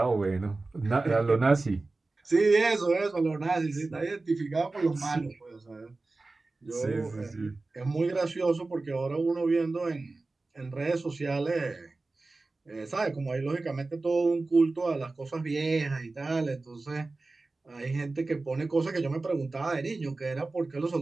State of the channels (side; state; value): left; quieter; 3.4 dB